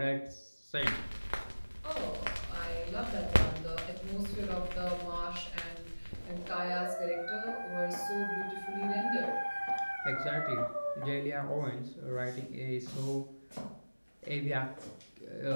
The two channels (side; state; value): both; inverted; correlation -1.00